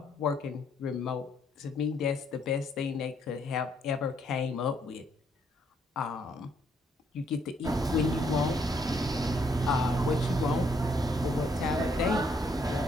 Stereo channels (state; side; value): normal; both; correlation 0.70